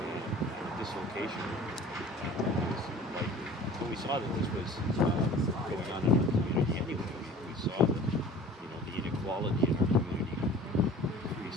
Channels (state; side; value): normal; both; correlation 0.44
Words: dislocation was likely. But we saw that this was going on in our community anyway. We saw that, the inequality in our community